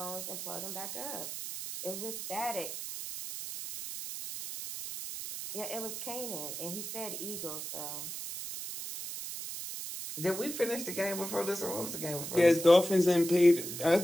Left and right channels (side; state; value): right; noise; hiss, 7 dB below the sound